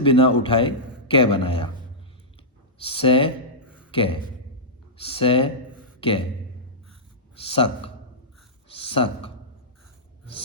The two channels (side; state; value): both; normal; correlation -0.13